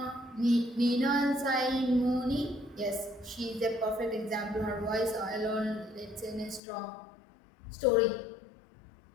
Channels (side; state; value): right; drops out; at 6.6 s